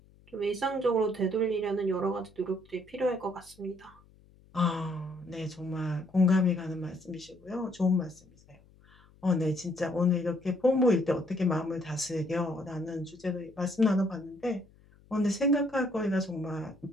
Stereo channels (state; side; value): noise; left; hum, 28 dB below the sound